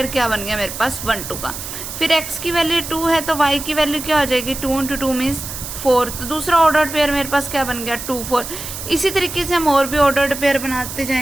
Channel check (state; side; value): noise; right; hiss, 8 dB below the sound